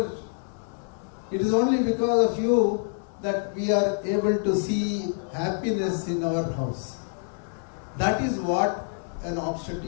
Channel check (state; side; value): silent; right; 60 dB below the other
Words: it is only because of you that we are able to see happiness in our house. That is what an